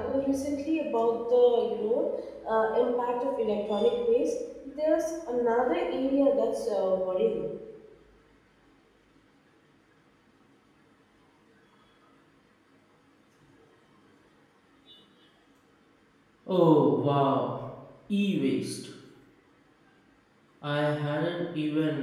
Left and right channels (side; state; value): both; identical; correlation 1.00